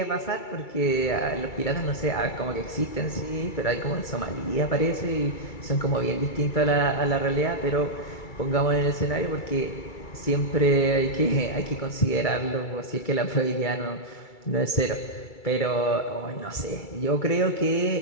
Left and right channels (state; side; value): late; right; 2.3 ms